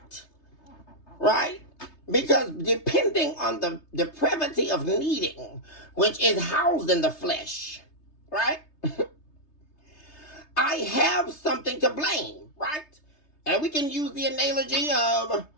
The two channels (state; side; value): late; right; 3.3 ms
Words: right? Because depending on the depravity of needing, which is housed in the flesh, right? I have something to blame, right? And we can use the analogy of,